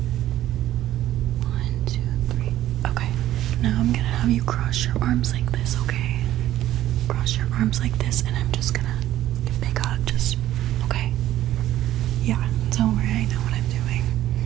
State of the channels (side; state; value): left; quieter; 13.4 dB